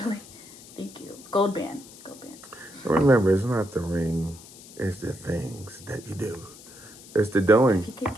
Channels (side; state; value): left; noise; hiss, 19 dB below the sound